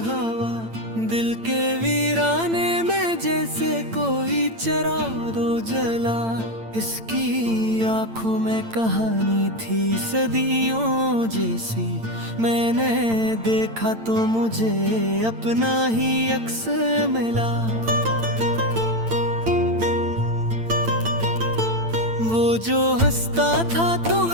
हवा, दिल के वीराने में जैसे कोई चराग जला। इसकी आंखों में कहानी थी सदियों जैसी, मैंने देखा तो मुझे अपना ही अक्स मिला। वो जो हंसता था तो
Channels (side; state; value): left; late; 8.9 ms